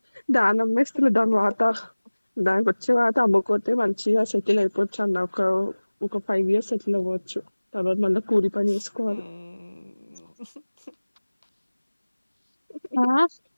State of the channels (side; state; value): both; inverted; correlation -1.00